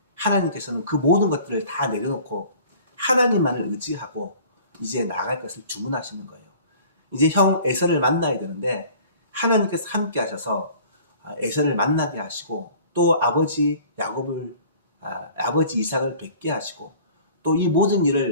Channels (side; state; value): both; inverted; correlation -0.48